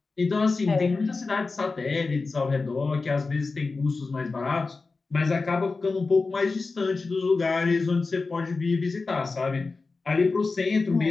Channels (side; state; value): right; quieter; 4.0 dB